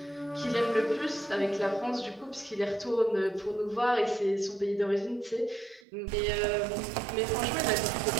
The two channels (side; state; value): left; drops out; at 5.9 s